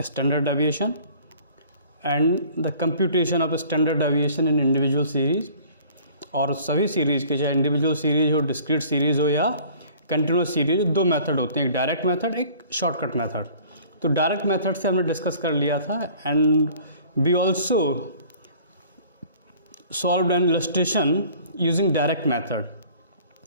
standard deviation and the computation of standard deviation in individual series. और सभी सीरीज़ के, चाहे इंडिविजुअल सीरीज हो, डिस्क्रीट सीरीज हो या कंटिन्यूस सीरीज, दो मेथड होते हैं, एक डायरेक्ट मेथड, एक शॉर्टकट मेथड। तो डायरेक्ट मेथड से हमने डिस्कस कर लिया था and we also solved an illustration using direct method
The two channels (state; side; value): inverted; both; correlation -0.51